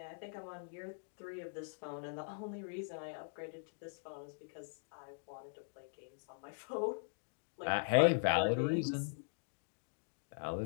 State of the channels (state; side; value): silent; right; digital silence